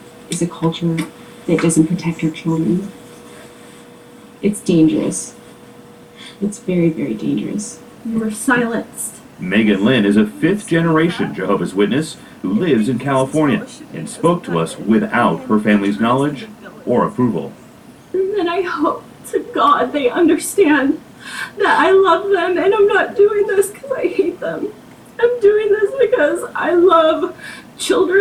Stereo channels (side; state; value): both; identical; correlation 1.00